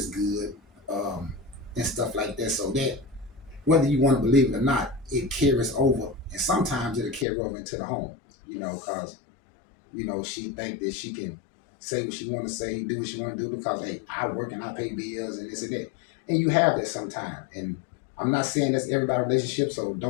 good, and stuff like that. So that whether you want to believe it or not, it carries over, and sometimes it'll carry over into the home. Because she think that she can say what she want to say, do what she want to do because hey, I work and I pay bills and this and that, and you have that sometimes. And I'm not saying that's everybody's relationship, so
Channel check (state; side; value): drops out; right; at 7.2 s